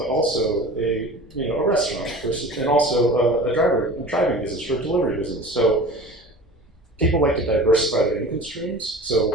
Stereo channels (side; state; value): both; normal; correlation 0.38